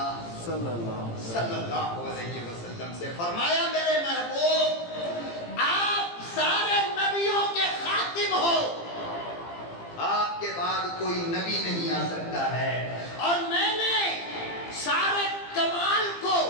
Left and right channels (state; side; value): late; right; 18 ms